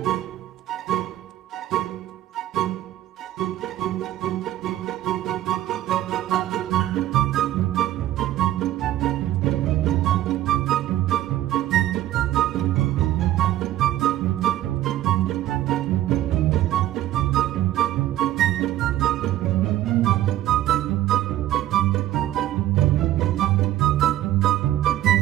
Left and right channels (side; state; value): left; quieter; 13.6 dB